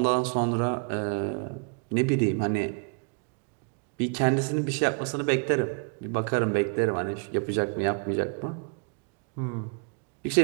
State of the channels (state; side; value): quieter; left; 36.9 dB